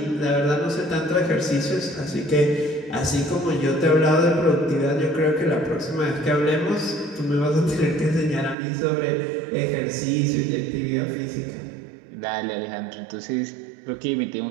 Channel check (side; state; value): left; drops out; at 8.6 s